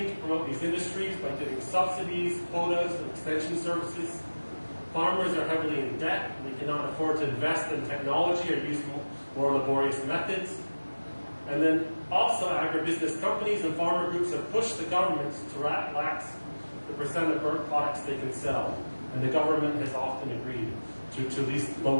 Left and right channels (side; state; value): both; inverted; correlation -1.00